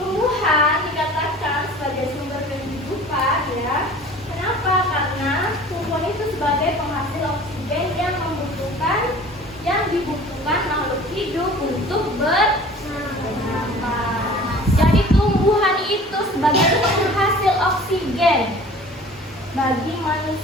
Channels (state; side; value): normal; both; correlation 0.45